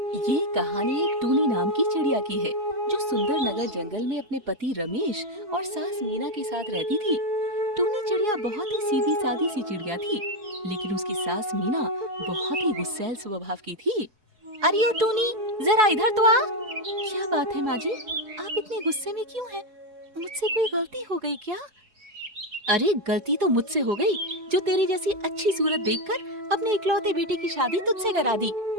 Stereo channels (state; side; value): late; left; 4.7 ms